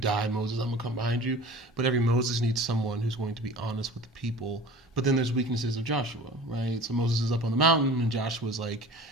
Moses, I'm going to come behind you. But every Moses needs someone who's going to be honest with the people. But then there's weaknesses of Joshua, right? So Moses is up on the mountain and Joshua's like,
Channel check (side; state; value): both; normal; correlation 0.41